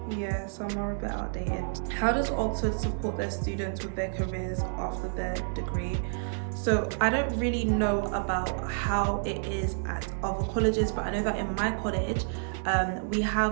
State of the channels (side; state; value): left; silent; digital silence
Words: yeah, some are a bit outdated. How does Oxford support their students with their careers after their degree? So I don't really know about how it is at other colleges, but I know that in my college, we